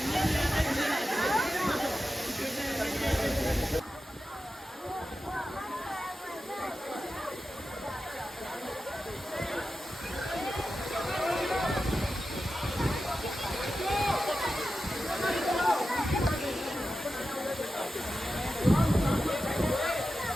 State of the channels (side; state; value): both; normal; correlation 0.92